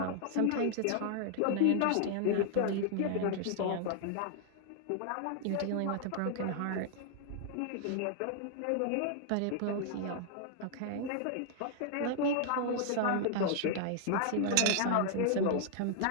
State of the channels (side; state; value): both; different; correlation 0.00